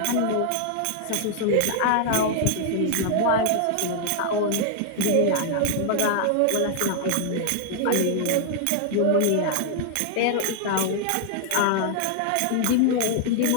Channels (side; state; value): both; different; correlation 0.00